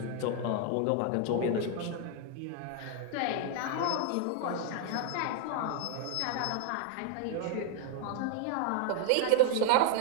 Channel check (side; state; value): both; different; correlation 0.00